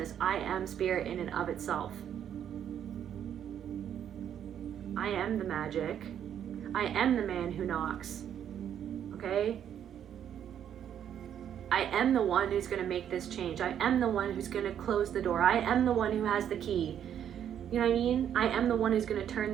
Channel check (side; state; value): left; quieter; 9.5 dB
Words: I am spirit in and of itself. I am the magic. I am the man who knocks. Okay? I am the one who's going to make this change. I am the one who's going to close the door. I am the one who has the key. You know what I mean? I am the one who's going to turn